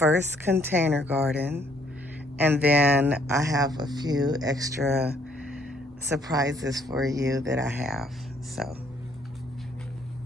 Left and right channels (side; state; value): both; normal; correlation 0.66